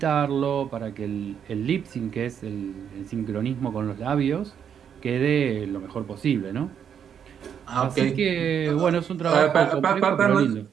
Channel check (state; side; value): quieter; left; 8.2 dB